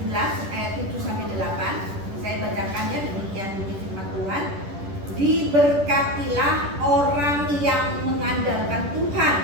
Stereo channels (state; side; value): late; left; 10 ms